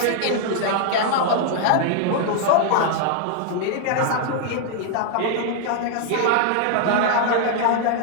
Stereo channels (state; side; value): different; both; correlation 0.00